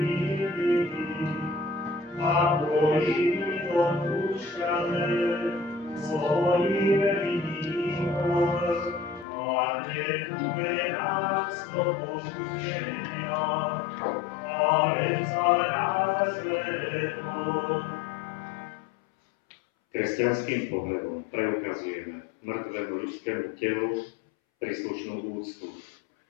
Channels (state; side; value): drops out; right; at 9.2 s